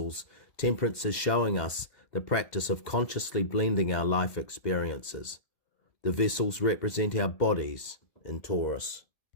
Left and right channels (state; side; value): late; right; 2.0 ms